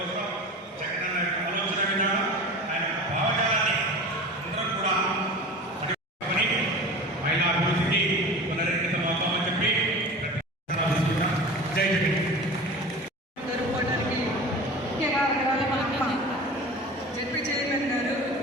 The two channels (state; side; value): normal; both; correlation 0.35